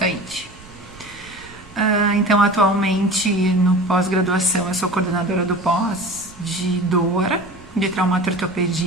Então, atualmente, no pós-graduação, eu sou coordenadora do pós de dor, de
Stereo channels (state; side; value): noise; right; rumble, 22 dB below the sound